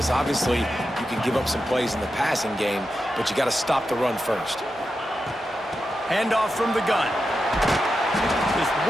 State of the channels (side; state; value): both; normal; correlation 0.89